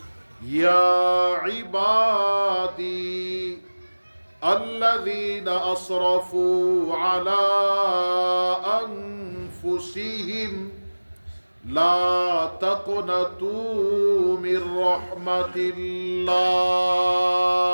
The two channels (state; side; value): inverted; both; correlation -1.00